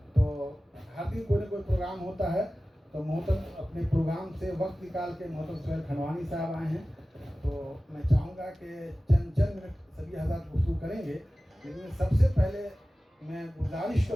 تو ہر دن کوئی نہ کوئی پروگرام ہوتا ہے، تو محترم اپنے پروگرام سے وقت نکال کے محترم سہیل کھنڈوانی صاحب آئے ہیں، تو میں چاہوں گا کہ چند منٹ سبھی حضرات گفتگو کریں گے، لیکن سب سے پہلے میں گزارش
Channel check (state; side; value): normal; both; correlation 0.96